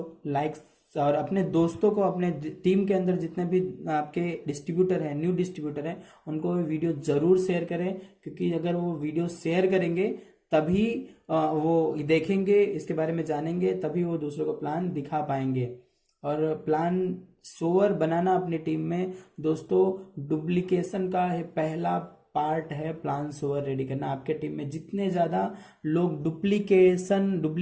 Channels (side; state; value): both; identical; correlation 1.00